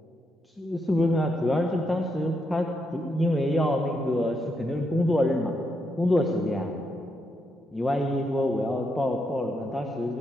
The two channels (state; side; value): normal; both; correlation 0.81